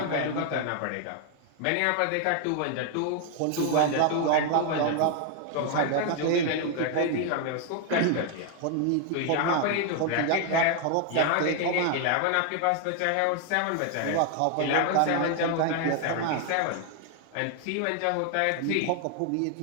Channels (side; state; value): both; different; correlation 0.00